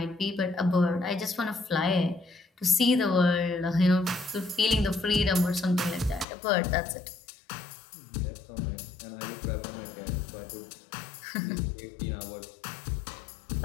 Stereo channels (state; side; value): drops out; right; at 6.2 s